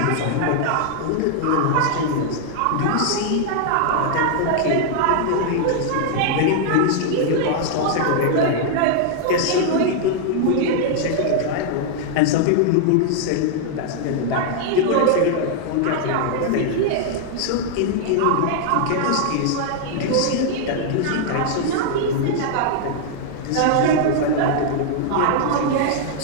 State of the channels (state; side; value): different; both; correlation 0.00